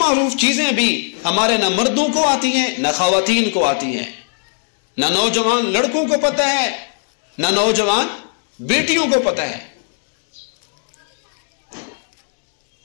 چیزیں بھی ہمارے نہ مردوں کو آتی ہیں نہ خواتین کو آتی ہیں، نہ نوجوان لڑکوں کو پتہ ہے نہ نوجوان بیٹیوں کو پتہ ہے۔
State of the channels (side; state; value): right; silent; digital silence